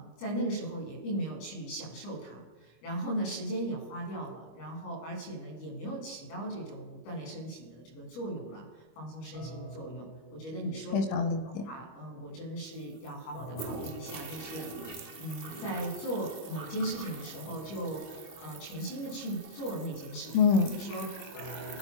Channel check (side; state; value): right; late; 25 ms